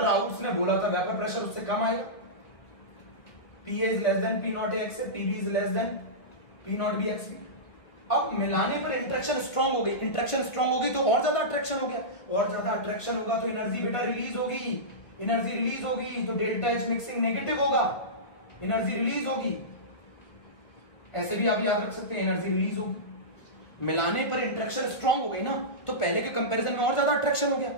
ने बोला था वेपर प्रेशर उससे कम आएगा। P is less than P nought X, PB is less than P not B X. अब मिलाने पर इंटरेक्शन स्ट्रांग हो गई, इंटरेक्शन स्ट्रांग हो गई तो और ज्यादा अट्रैक्शन हो गया, और ज्यादा अट्रैक्शन होगा तो एनर्जी बेटा रिलीज होगी, एनर्जी रिलीज होगी तो डेल्टा एच मिक्सिंग नेगेटिव होगा, एनर्जी रिलीज होगी। ऐसे भी आप याद रख सकते हैं एनर्जी रिलीज होगी। मिलाने पर इंटरेक्शन स्ट्रांग हो गई ना, तो पहले के कंपैरिजन में और ज्यादा अट्रैक्शन हो गया,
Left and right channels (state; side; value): late; right; 1.9 ms